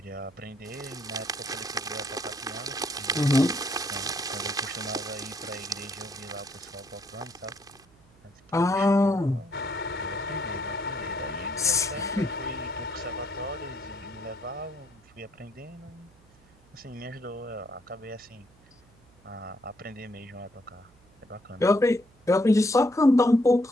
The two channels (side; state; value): right; noise; hum, 29 dB below the sound